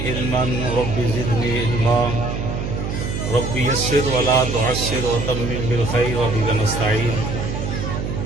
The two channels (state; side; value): noise; right; hum, 4 dB below the sound